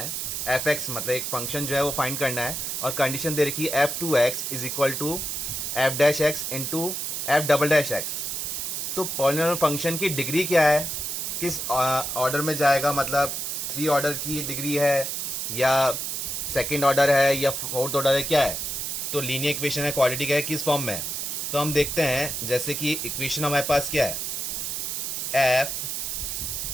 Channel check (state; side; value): noise; right; hiss, 3 dB below the sound